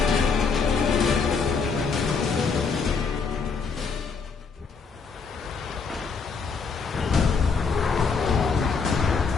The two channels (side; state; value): right; quieter; 5.2 dB